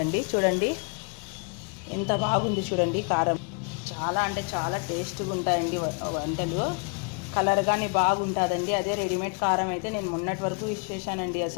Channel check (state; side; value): quieter; right; 35.8 dB